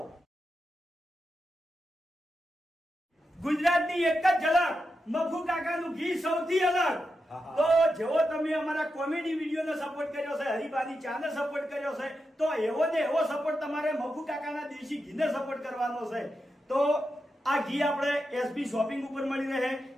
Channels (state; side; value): normal; both; correlation 0.88